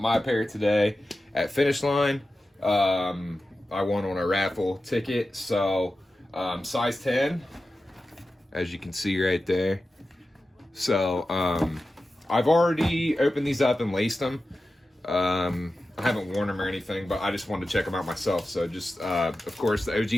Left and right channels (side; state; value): both; normal; correlation 0.93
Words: pair today at Finish Line. I won on a raffle ticket, so size 10, as you can see right there. So I've already opened these up and laced them. I haven't worn them or anything, but I just wanted to check them out myself. So just, of course, the